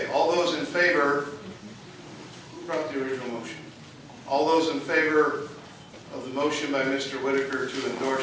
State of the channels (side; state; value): both; identical; correlation 1.00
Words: all those in favor, who brought the original motion? All those in favor of the motion by Mr. Whitaker to